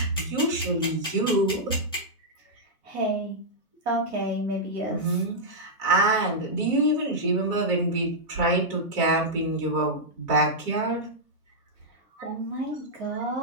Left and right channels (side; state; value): both; normal; correlation -0.07